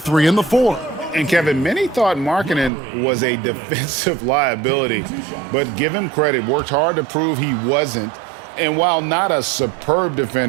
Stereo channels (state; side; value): drops out; left; at 2.7 s